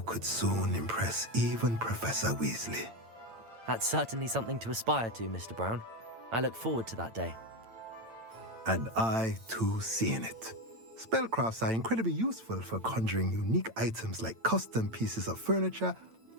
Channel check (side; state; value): left; late; 8.9 ms